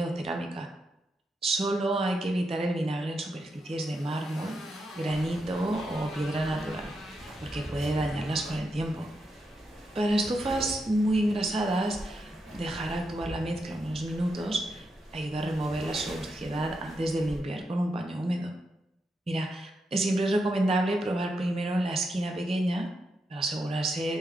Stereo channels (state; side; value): normal; both; correlation 0.84